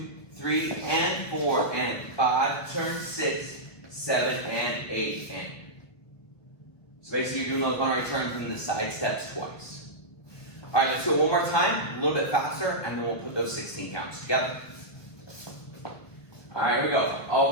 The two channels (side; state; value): right; late; 1.5 ms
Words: 3 and 4 and 5, turn 6, 7 and 8 and. So basically you're doing those Monterey turns and the side steps twice. All right, let's do it one more time, a little bit faster, and then we'll put those 16 counts together. All right, here we go. All